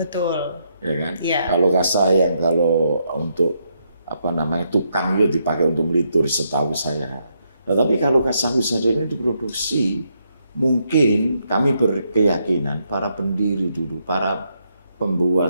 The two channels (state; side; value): inverted; both; correlation -0.78